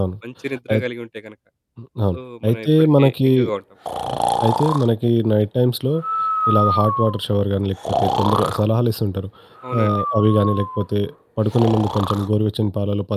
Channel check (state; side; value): identical; both; correlation 1.00